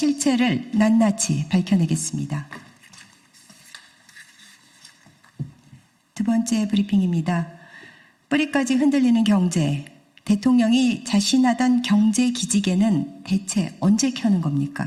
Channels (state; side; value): identical; both; correlation 1.00